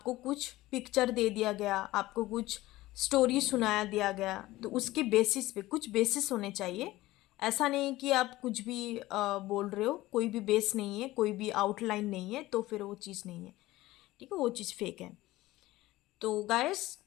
कुछ पिक्चर दे दिया गया, आपको कुछ स्टोरी सुनाया दिया गया, तो उसके बेसिस पे कुछ बेसिस होने चाहिए। ऐसा नहीं कि आप कुछ भी बोल रहे हो, कोई भी बेस नहीं है, कोई भी आउटलाइन नहीं है, तो फिर वो चीज़ नहीं है। ठीक है, वो चीज़ फेक है। तो गाइस,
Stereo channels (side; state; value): right; quieter; 17.6 dB